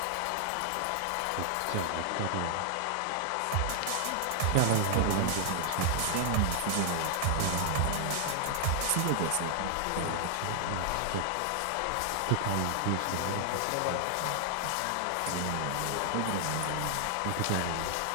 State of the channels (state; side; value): different; both; correlation 0.00